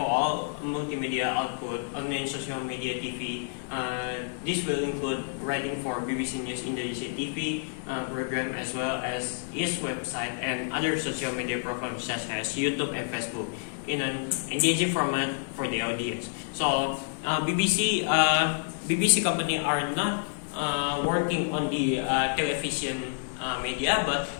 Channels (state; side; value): silent; right; digital silence